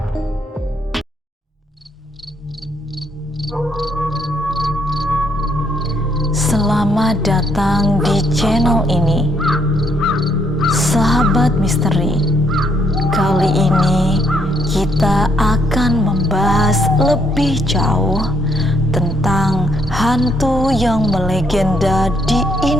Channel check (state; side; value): normal; both; correlation 0.71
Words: Selamat datang di channel ini, Sahabat Misteri. Kali ini kita akan membahas lebih jauh tentang hantu yang melegenda di